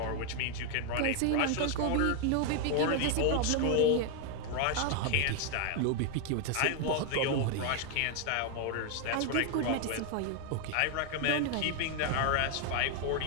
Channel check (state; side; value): different; both; correlation 0.01